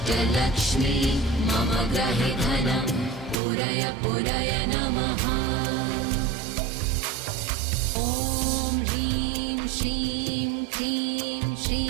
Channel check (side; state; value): left; drops out; at 3.4 s